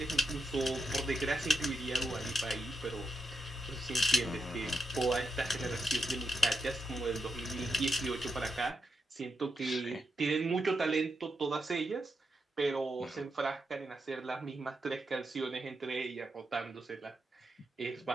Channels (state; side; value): normal; both; correlation 0.85